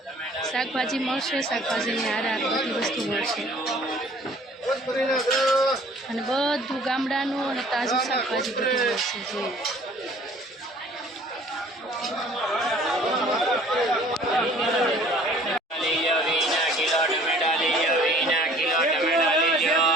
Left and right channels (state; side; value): normal; both; correlation 0.53